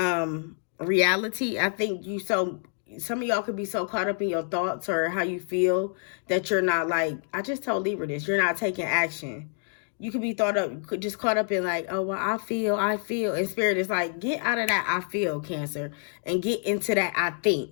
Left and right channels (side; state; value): right; silent; 55 dB below the other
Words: reality. I think some of y'all could be so caught up in your thoughts or how you feel that you're not like, I just told Libra this, you're not taking action. You could be just caught up in like, oh, well, I feel. And Spirit is like, get out of that I feel, Cancer, and get into that I think.